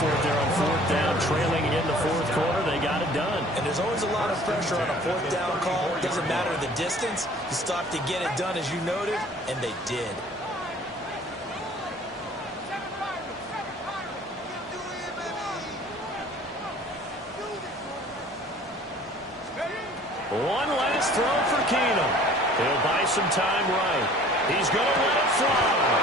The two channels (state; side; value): normal; both; correlation 0.50